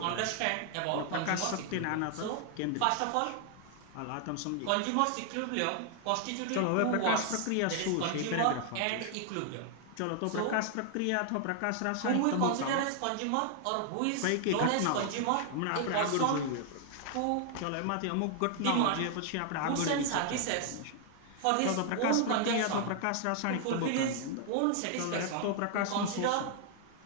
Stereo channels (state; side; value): different; both; correlation 0.00